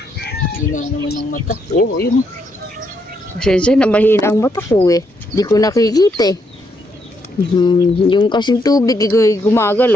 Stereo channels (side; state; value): both; normal; correlation 0.76